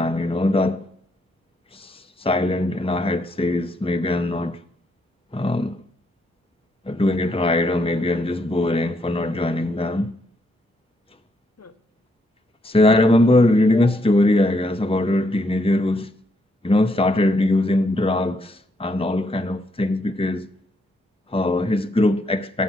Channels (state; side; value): normal; both; correlation 0.75